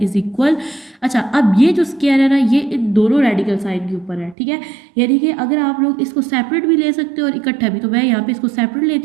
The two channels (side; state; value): left; drops out; at 4.4 s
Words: इज इक्वल। अच्छा, अब ये जो स्केयर है ना ये इन दोनों रेडिकल साइन के ऊपर है, ठीक है। यानी कि अगर आप लोग इसको सेपरेट भी ले सकते हो और इकट्ठा भी, तो मैं यहाँ पे इसको सेपरेट